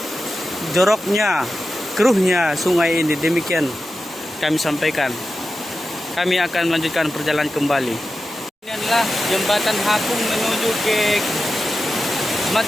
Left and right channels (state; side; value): normal; both; correlation 0.92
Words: joroknya, keruhnya sungai ini. Demikian kami sampaikan. Kami akan melanjutkan perjalanan kembali. Ini adalah jembatan Hapung menuju ke